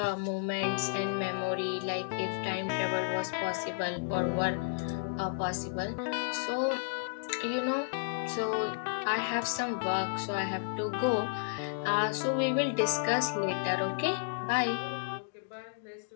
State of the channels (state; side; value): silent; right; digital silence